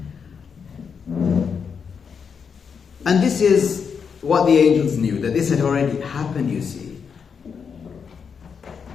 And this is what the angels knew, that this had already happened, you see.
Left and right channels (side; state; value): right; quieter; 6.4 dB